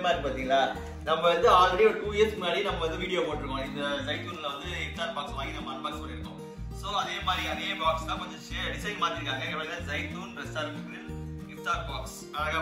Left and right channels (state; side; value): identical; both; correlation 1.00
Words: இருக்கு பாத்தீங்களா? நம்ம வந்து ஆல்ரெடி ஒரு 2 இயர்ஸ் முன்னாடி நம்ம வந்து வீடியோ போட்டுருக்கோம். இந்த ஜைத்தூன்ல வந்து இஃப்தார் பாக்ஸ் வாங்கி நம்ம அன்பாக்ஸ் பண்ணிருக்கோம். சோ அதே மாதிரி அதே பாக்ஸ் தான் கொஞ்சம் டிசைன் மாத்திருக்காங்க. இங்க ஜைத்தூன் ரெஸ்டாரன்ட் கிரில் இஃப்தார் பாக்ஸ் அழகா